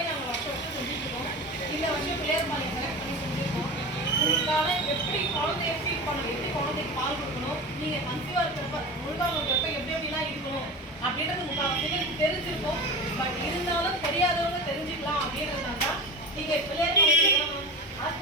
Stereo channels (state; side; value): normal; both; correlation 0.28